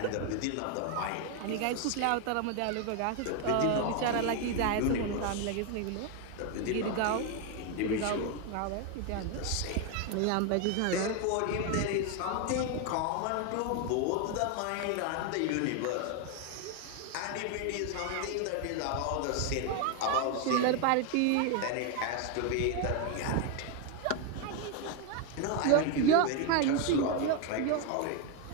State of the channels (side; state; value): both; different; correlation 0.01